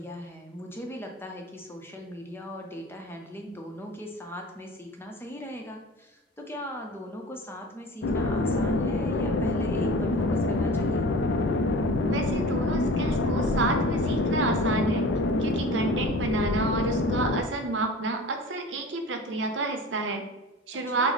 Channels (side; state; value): both; normal; correlation 0.38